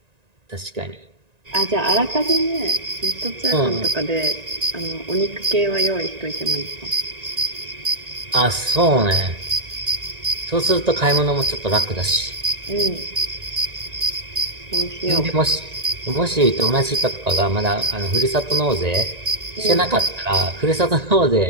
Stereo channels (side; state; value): left; late; 1.9 ms